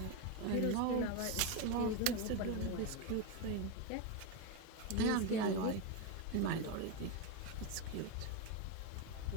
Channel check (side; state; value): both; different; correlation 0.03